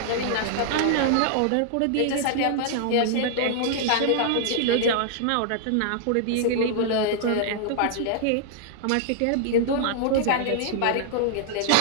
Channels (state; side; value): different; both; correlation -0.01